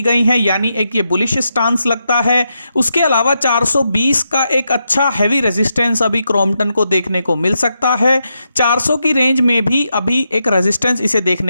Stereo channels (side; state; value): both; inverted; correlation -0.84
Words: गई है, यानी एक ये बुलिश स्टांस लगता है। उसके अलावा 420 का एक अच्छा हैवी रेजिस्टेंस अभी क्रॉम्पटन को देखने को मिल सकता है। 400 की रेंज में भी अभी एक रेजिस्टेंस इसे